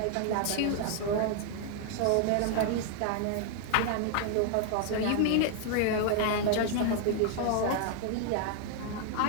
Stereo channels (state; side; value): different; both; correlation 0.00